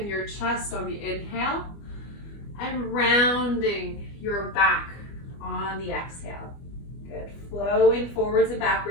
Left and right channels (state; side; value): late; right; 25 ms